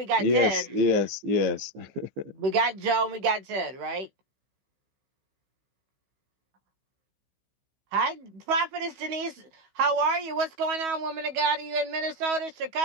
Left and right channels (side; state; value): left; late; 16 ms